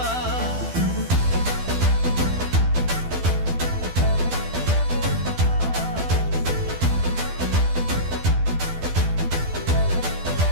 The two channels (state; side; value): late; left; 12 ms